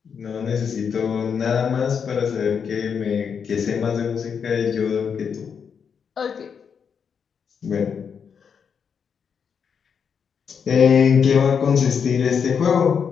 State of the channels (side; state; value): right; quieter; 6.8 dB